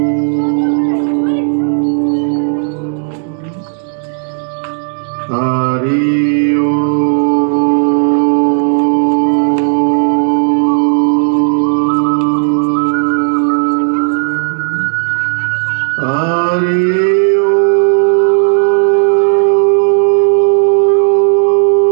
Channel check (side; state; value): left; silent; digital silence